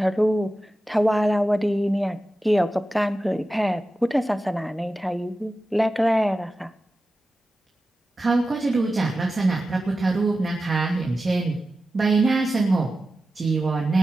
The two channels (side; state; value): both; normal; correlation 0.93